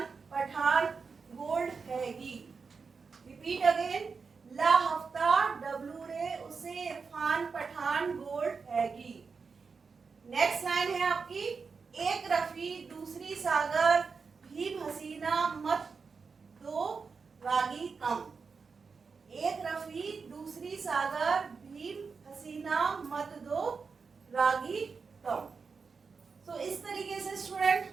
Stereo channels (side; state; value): left; quieter; 5.1 dB